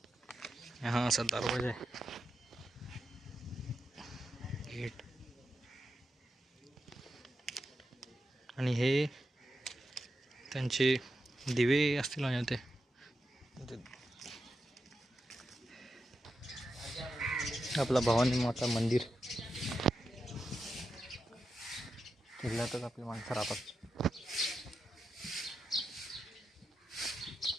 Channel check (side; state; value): both; normal; correlation 0.88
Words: हा असा दरवाजा आहे, गेट. आणि हे त्यांचे दिवे असतील. आणि ते आपला भवानी माता मंदिर. किल्ल्यातच आपली माणसं राहतात.